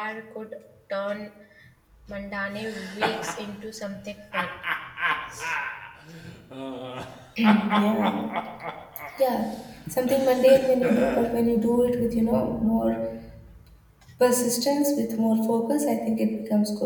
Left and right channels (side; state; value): both; identical; correlation 1.00